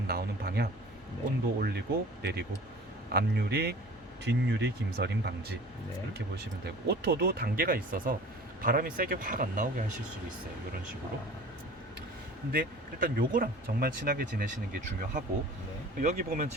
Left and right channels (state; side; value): normal; both; correlation 0.43